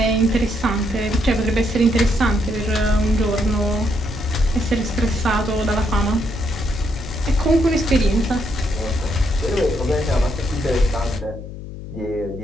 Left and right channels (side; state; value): left; noise; hum, 11 dB below the sound